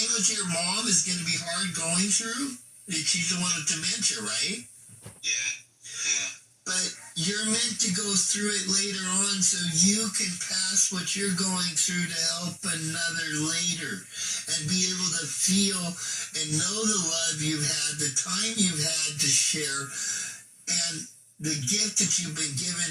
with your mom is going to be hard going through. She's the one with dementia, right? Yeah. Yeah. But you're meant to go through it later on so you can pass what you're going through to help another later and be able to feel and know the love you've had, the time you've had to share, and the gift that you've been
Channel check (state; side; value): identical; both; correlation 1.00